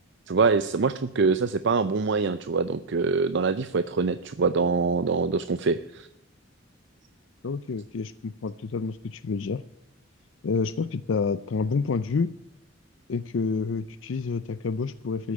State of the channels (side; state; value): both; normal; correlation 0.05